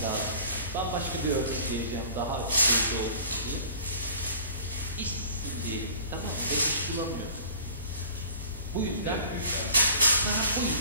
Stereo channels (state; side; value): inverted; both; correlation -0.47